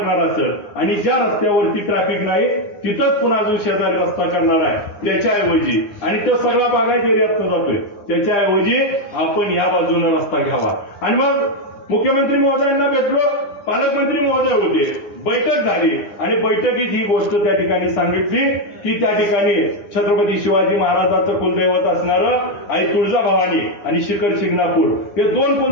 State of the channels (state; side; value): late; right; 9.7 ms